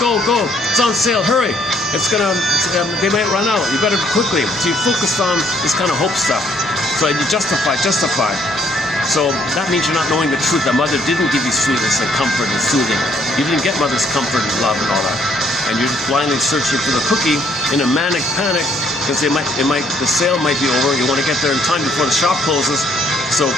It's on sale. Hurry. They might run out. You better quickly. So you focus on this kind of hope stuff. So you justify. So that means you're not knowing the truth that mother didn't give you sweetness and comfort and soothing. You didn't get mother's comfort and love and all that. And you're blindly searching for the cookie in a manic panic because the sale might be over. You want to get there in time before the shop closes. So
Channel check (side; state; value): both; normal; correlation 0.67